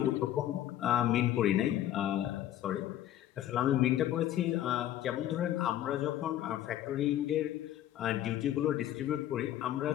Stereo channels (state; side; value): quieter; right; 12.3 dB